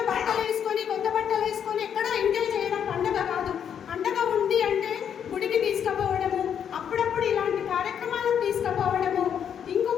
బట్టలు వేసుకొని కొత్త బట్టలు వేసుకొని ఎక్కడో ఎంజాయ్ చేయడం పండగ కాదు. పండగ ఉంది అంటే గుడికి తీసుకుపోవడము, అప్పుడప్పుడు ఇలాంటి కార్యక్రమాలకు తీసుకుపోవడము.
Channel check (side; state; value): right; quieter; 8.4 dB